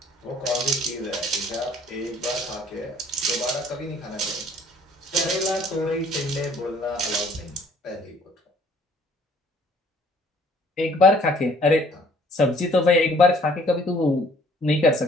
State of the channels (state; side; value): normal; both; correlation 0.58